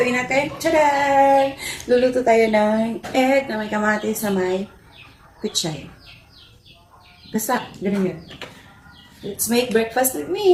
natin? Tcharan! Luluto tayo ng egg na may kamatis sa may kutsay. Basta, ganun yun. Let's make breakfast with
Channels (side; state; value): both; identical; correlation 1.00